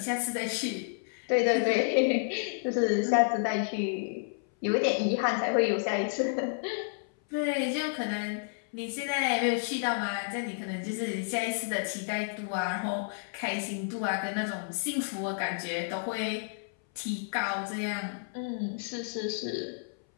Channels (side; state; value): right; silent; 57 dB below the other